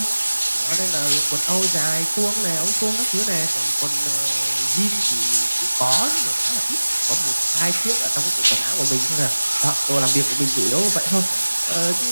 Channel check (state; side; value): inverted; both; correlation -1.00